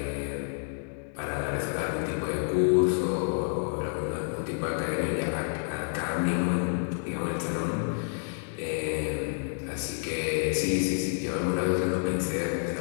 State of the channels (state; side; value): silent; right; digital silence